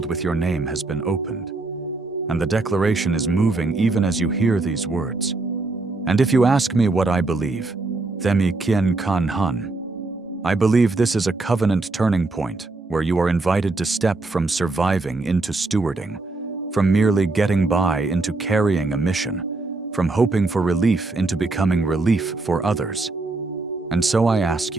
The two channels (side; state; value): left; quieter; 3.3 dB